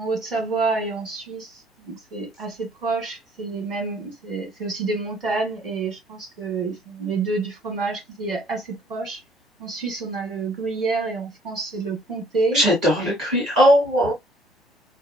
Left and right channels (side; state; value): both; normal; correlation 0.60